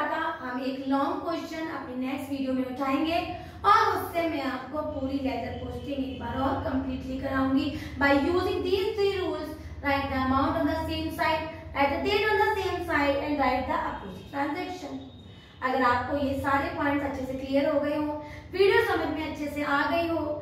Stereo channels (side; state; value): both; identical; correlation 1.00